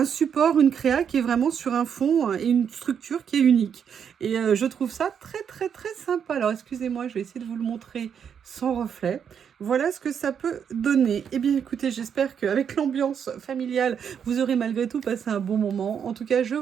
support, une créa qui est vraiment sur un fond et une structure qui est unique. Et je trouve ça très très très sympa. Alors excusez-moi, je vais essayer de vous le montrer sans reflet. Voilà ce que ça peut donner. Eh bien écoutez, j'espère qu'avec l'ambiance familiale, vous aurez malgré tout passé un bon moment. En tout cas, je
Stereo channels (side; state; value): left; quieter; 7.7 dB